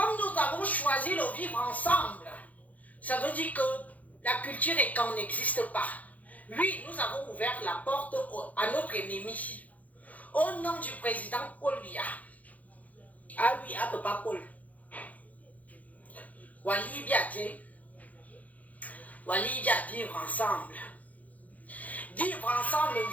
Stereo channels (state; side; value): late; right; 0.076 ms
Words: nous avons choisi de vivre ensemble, ça veut dire que la culture est quand n'existe pas. Oui, nous avons ouvert la porte à notre ennemi. Au nom du président Paul Biya. Ah oui, à Papa Paul. Wali Biadje. Wali Biya, vivre ensemble. Vivre ensemble